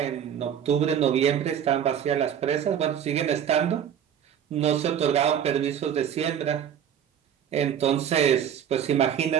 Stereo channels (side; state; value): left; quieter; 9.1 dB